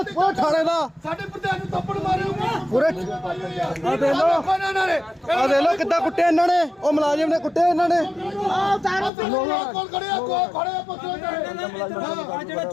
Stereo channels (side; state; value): right; drops out; at 9.1 s